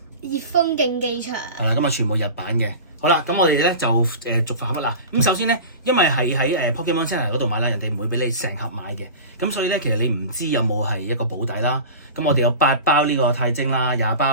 熱風競技場，係啦，咁啊全部日版嘅。好啦，咁我哋咧就逐盒啦。咁首先咧，因為係喺Pokemon Center 嗰度買啦，人哋唔會俾你成盒買嘅。咁所以咧，其實你唔知有冇係一個保底啦。咁我哋有8包呢個太晶啦，20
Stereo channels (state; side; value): inverted; both; correlation -0.33